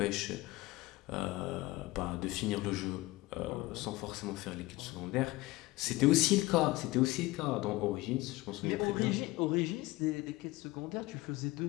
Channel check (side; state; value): right; quieter; 20.0 dB